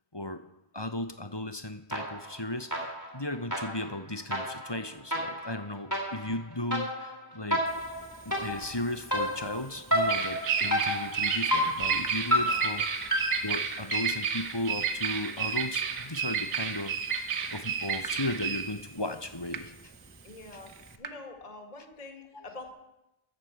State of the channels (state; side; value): late; right; 1.2 ms